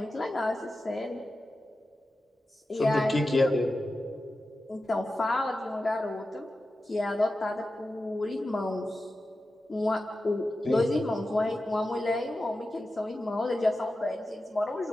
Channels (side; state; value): both; normal; correlation 0.93